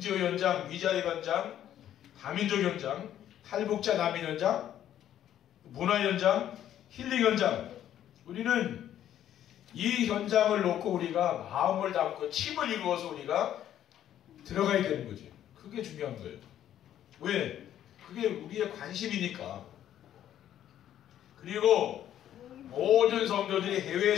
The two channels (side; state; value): right; quieter; 11.1 dB